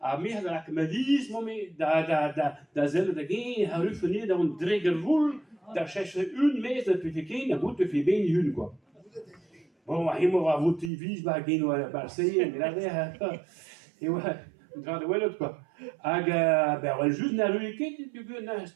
a me da kmelis momi da zel da ge ha rufeni da un dreger vul da cherche une mes de pifikin da gut fi ben hun quoi. Bon, ma himo va vous TV ba gen wa Marseille mais là et ouais, dra de welot quoi. Ag ben wel juste na ruiket du na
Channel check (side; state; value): left; drops out; at 10.9 s